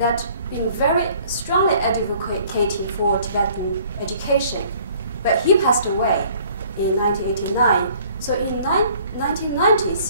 been very strongly advocating for Tibetan education. But he passed away in 1989. So in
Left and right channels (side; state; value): both; inverted; correlation -0.56